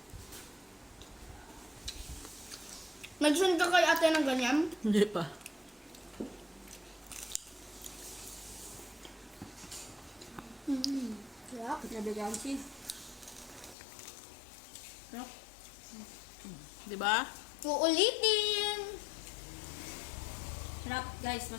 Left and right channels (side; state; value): right; drops out; at 13.8 s